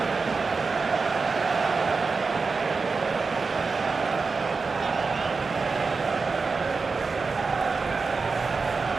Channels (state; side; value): quieter; left; 4.5 dB